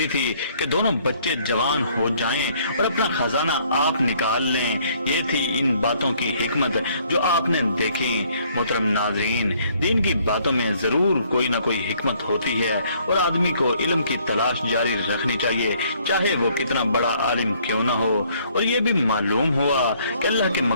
تھی کہ دونوں بچے جوان ہو جائیں اور اپنا خزانہ آپ نکال لیں۔ یہ تھی ان باتوں کی حکمت جو آپ نے دیکھی۔ محترم ناظرین، دین کی باتوں میں ضرور کوئی نہ کوئی حکمت ہوتی ہے، اور آدمی کو علم کی تلاش جاری رکھنی چاہیے، چاہے وہ کتنا بڑا عالم کیوں نہ ہو۔ اور یہ بھی معلوم ہوا کہ اللہ کے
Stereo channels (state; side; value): inverted; both; correlation -0.63